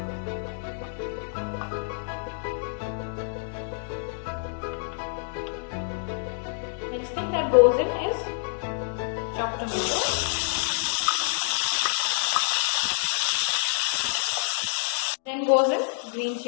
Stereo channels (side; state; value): right; silent; digital silence